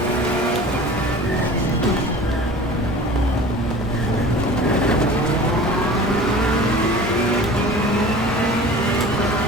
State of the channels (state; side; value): normal; both; correlation 0.40